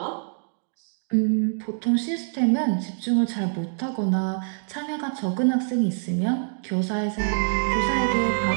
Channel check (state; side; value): silent; left; digital silence